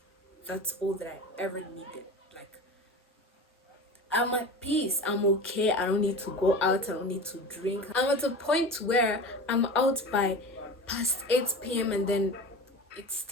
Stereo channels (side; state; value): both; normal; correlation 0.32